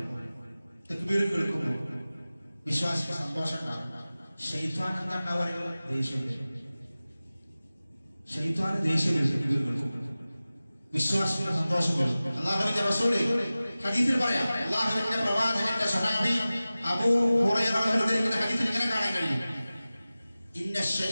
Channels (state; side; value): inverted; both; correlation -0.97